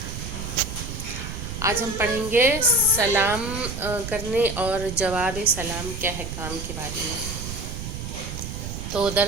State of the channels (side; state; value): right; noise; rumble, 7 dB below the sound